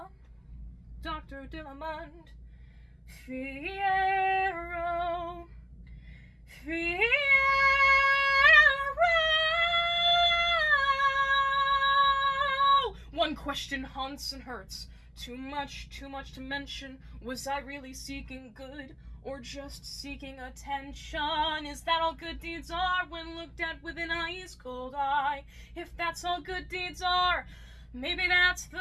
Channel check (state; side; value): identical; both; correlation 1.00